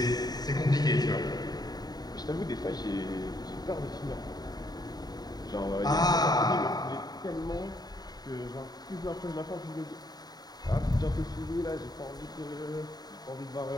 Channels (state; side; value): late; right; 0.19 ms